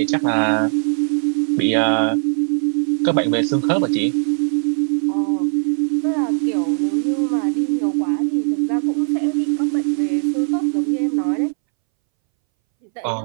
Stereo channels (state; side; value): silent; left; 64 dB below the other